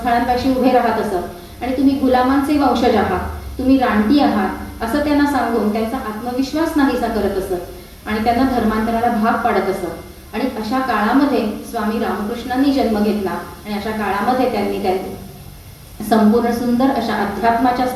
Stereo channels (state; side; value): identical; both; correlation 1.00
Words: उभे राहत असत आणि तुम्ही गुलामांचे वंशज आहात, तुम्ही रानटी आहात असं त्यांना सांगून त्यांचा आत्मविश्वास नाहीसा करत असत आणि त्यांना धर्मांतराला भाग पाडत असत. आणि अशा काळामध्ये स्वामी रामकृष्णांनी जन्म घेतला आणि अशा काळामध्ये त्यांनी संपूर्ण सुंदर अशा अध्यात्माच्या